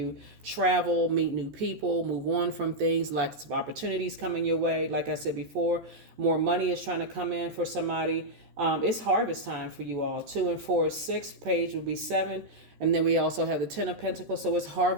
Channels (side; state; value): left; late; 14 ms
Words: travel, meet new people, move on from things. Lots of opportunities coming your way. Like I said before, more money is trying to come in for somebody. It's harvest time for you all. 2 and 4 is 6. Page would be 7. And then we also have the 10 of Pentacles. So it's